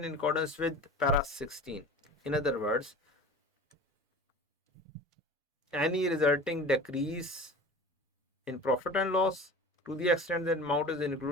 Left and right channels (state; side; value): normal; both; correlation 0.37